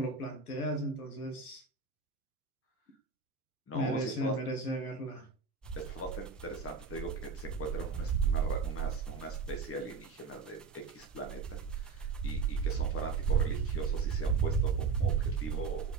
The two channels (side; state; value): left; quieter; 4.9 dB